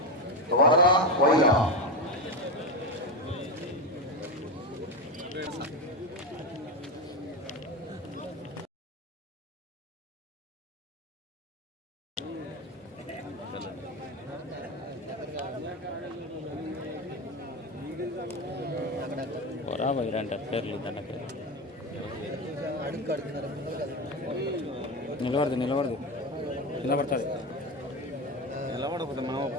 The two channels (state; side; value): normal; both; correlation 0.17